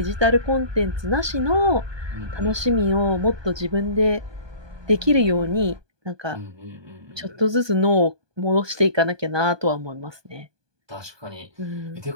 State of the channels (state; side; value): late; left; 1.2 ms